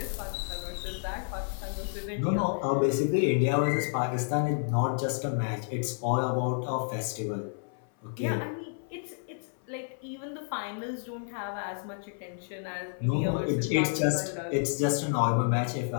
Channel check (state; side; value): silent; right; 58 dB below the other